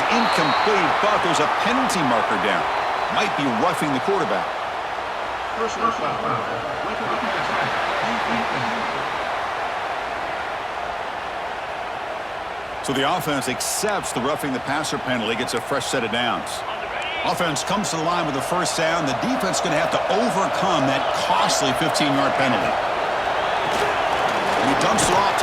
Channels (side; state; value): both; identical; correlation 1.00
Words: incomplete, but there's a penalty marker down. Might be roughing the quarterback. So the offense accepts the roughing the passer penalty, gets a fresh set of downs. Offense comes to the line with the first down. The defense is going to have to overcome that costly 15-yard penalty. And he dumps it off